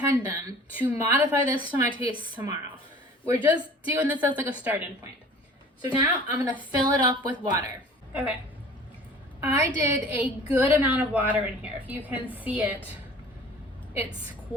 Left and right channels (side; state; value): both; normal; correlation 0.46